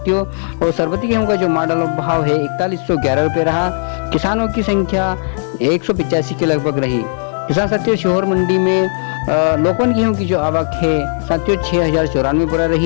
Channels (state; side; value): silent; right; digital silence